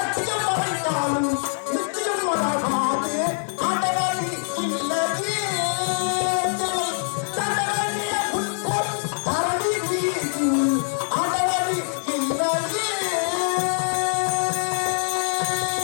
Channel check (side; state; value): right; silent; 63 dB below the other